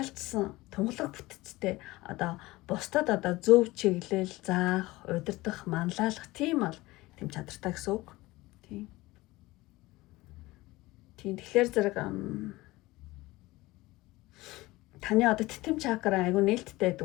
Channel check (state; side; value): quieter; right; 19.8 dB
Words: тунгалаг бүтцтэй одоо бусдад одоо зөв чиглэл заах, удирдах, манлайлах тийм бол тийм чадртай гэсэн үг. Тийм. Тэгэхээр зэрэг таны одоо титэм чакра айгу нээлттэй